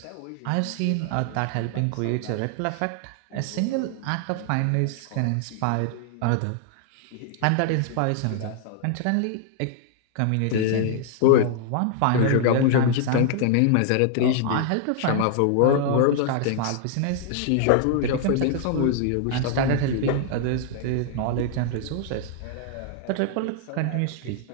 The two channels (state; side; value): different; both; correlation 0.00